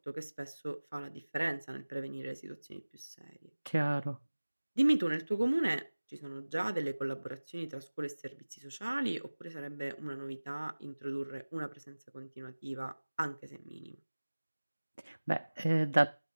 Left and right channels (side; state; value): both; inverted; correlation -1.00